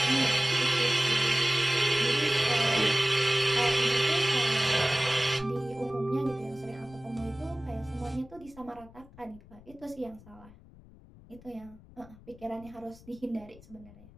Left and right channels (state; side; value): noise; left; rumble, 22 dB below the sound